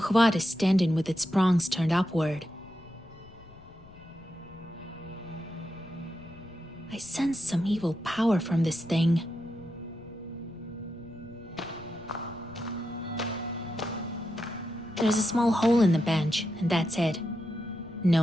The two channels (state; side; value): noise; left; rumble, 22 dB below the sound